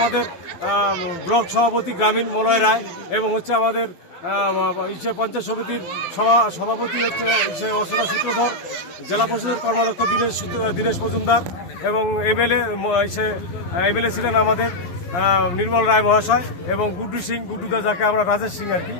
ব্লক সভাপতি গ্রামীণ মলয় রায় এবং হচ্ছে আমাদের পঞ্চায়েত সমিতির সভাপতি হচ্ছে অর্চনা সূত্রধর, জেলা পরিষদের কর্মাধ্যক্ষ দীনেশ মজুমদার এবং এমএলএ ছিলেন আমাদের নির্মল রায় মহাশয় এবং গুড্ডু সিং, গুড্ডুদা যাকে আমরা রাজেশ সিং আর কি,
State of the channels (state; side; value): late; right; 11 ms